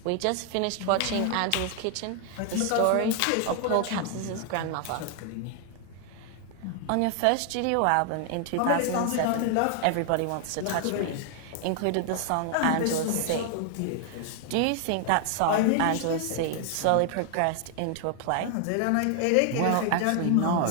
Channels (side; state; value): both; different; correlation 0.00